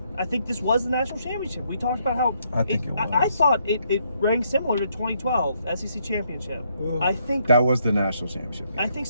I think this was the national championship. We talked about how I think it I was. thought it rang similar to 2012 SEC championship. Ugh. I think That was the national championship game. I think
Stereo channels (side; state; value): both; inverted; correlation -0.73